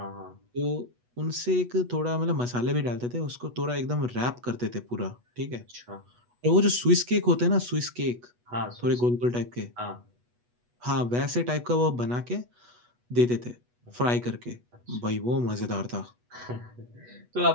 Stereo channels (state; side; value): late; left; 8.2 ms